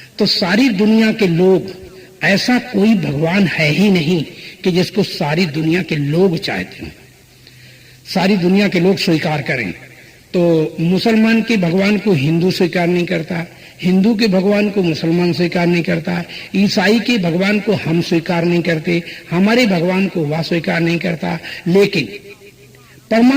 तो सारी दुनिया के लोग, ऐसा कोई भगवान है ही नहीं कि जिसको सारी दुनिया के लोग चाहते हो, सारी दुनिया के लोग स्वीकार करें। तो मुसलमान के भगवान को हिंदू स्वीकार नहीं करता, हिंदू के भगवान को मुसलमान स्वीकार नहीं करता, ईसाई के भगवान को हम स्वीकार नहीं करते, हमारे भगवान को वह स्वीकार नहीं करता। लेकिन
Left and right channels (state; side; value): identical; both; correlation 1.00